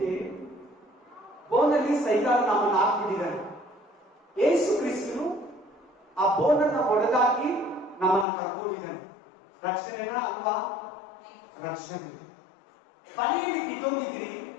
ಬೋನಲ್ಲಿ ಸೈತಾನ ನಮ್ಮನ್ನು ಹಾಕ್ಬಿಟ್ಟಿದ್ದಾನೆ. ಯೇಸು ಕ್ರಿಸ್ತನು ಆ ಬೋನನ್ನ ಒಡೆದಾಕಿ ನಮ್ಮನ್ನ ಕರ್ಕೊಂಡಿದ್ದಾನೆ. ರಕ್ಷಣೆನ ಅಲ್ವಾ? ರಕ್ಷಣೆ. ಬಲೆಯಲ್ಲಿ ಬಿದ್ದೋಗಿದ್ರಿ,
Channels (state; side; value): drops out; right; at 8.2 s